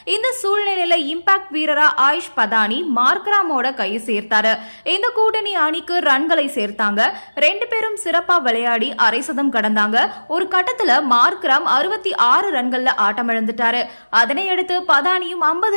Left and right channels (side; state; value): both; inverted; correlation -1.00